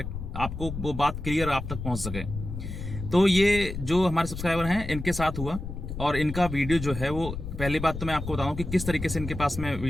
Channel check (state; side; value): noise; left; rumble, 7 dB below the sound